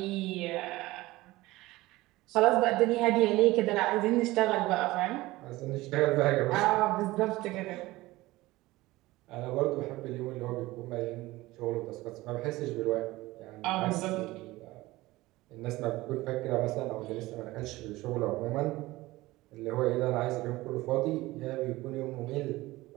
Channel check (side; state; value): left; quieter; 19.0 dB